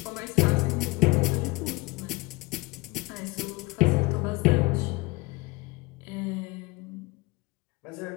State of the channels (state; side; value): quieter; right; 23.3 dB